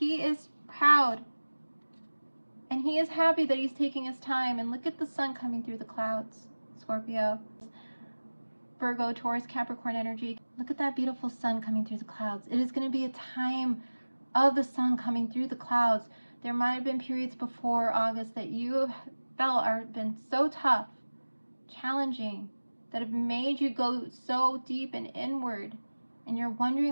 is proud. And he is happy that he's taking his time. And look at the sun coming through the clouds, Scorpio. Virgo, Taurus, Capricorn energy. Look at that beautiful sun coming through the clouds. It is going to be a time of the sun coming through the clouds. There might have been periods before August that you felt have been so tough, challenging, that have made you go so deep and inward. And you're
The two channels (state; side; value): inverted; both; correlation -1.00